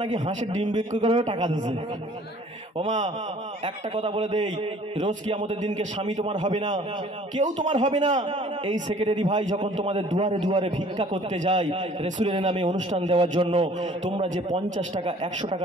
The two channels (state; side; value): normal; both; correlation 0.53